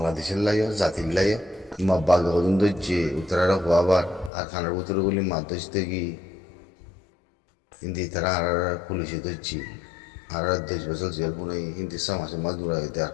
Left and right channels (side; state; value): right; drops out; at 4.3 s